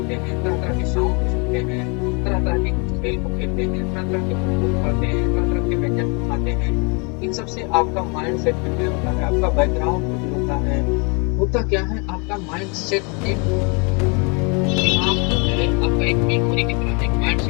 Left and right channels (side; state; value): right; quieter; 33.1 dB